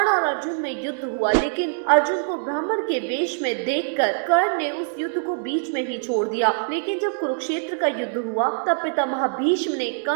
और अर्जुन में युद्ध हुआ, लेकिन अर्जुन को ब्राह्मण के वेश में देखकर कर्ण ने उस युद्ध को बीच में ही छोड़ दिया। लेकिन जब कुरुक्षेत्र का युद्ध हुआ, तब पितामह भीष्म ने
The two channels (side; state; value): left; silent; 63 dB below the other